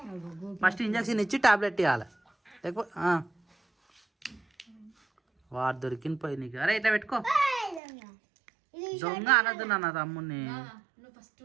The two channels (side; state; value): left; drops out; at 7.8 s